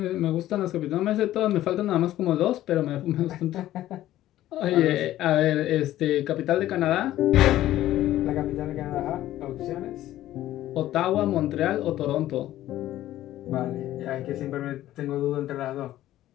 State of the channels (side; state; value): right; quieter; 14.0 dB